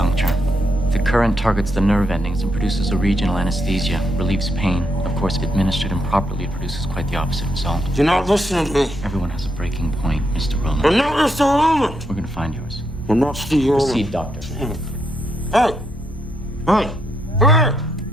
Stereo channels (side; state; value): both; normal; correlation 0.79